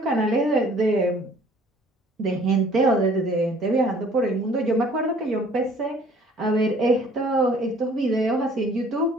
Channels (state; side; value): normal; both; correlation 0.55